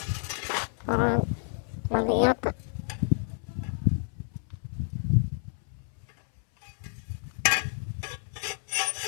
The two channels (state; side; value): silent; right; 58 dB below the other